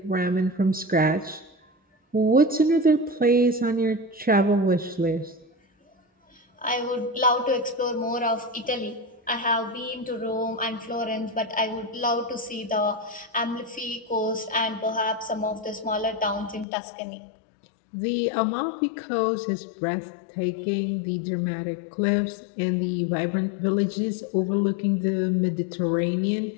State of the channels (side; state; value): right; drops out; at 16.7 s